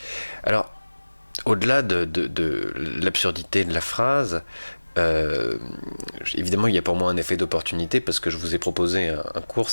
Alors, au-delà de l'absurdité de la phrase, évidemment, il y a pour moi un effet d'opportunité parce que je vous ai proposé un cours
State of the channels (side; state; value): both; inverted; correlation -1.00